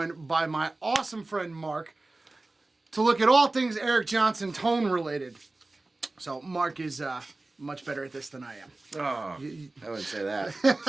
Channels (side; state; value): left; quieter; 3.1 dB